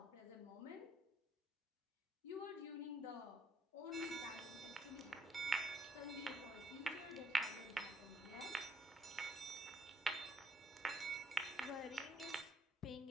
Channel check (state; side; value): normal; both; correlation 0.70